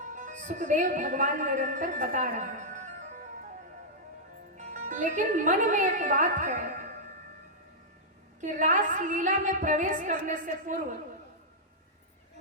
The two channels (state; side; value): normal; both; correlation -0.09